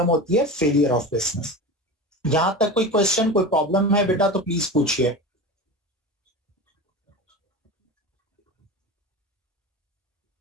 होती है फेलियर ऑफ बिजनेस। यहां तक कोई क्वेश्चन, कोई प्रॉब्लम है बेटा तो प्लीज पूछिए।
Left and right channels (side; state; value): both; normal; correlation 0.28